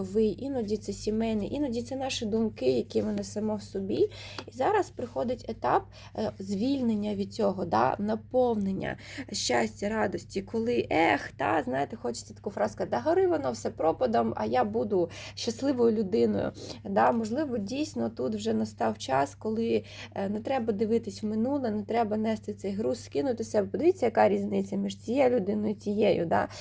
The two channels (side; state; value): both; identical; correlation 1.00